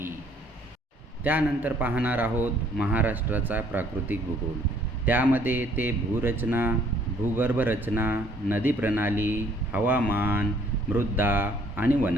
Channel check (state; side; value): normal; both; correlation 0.61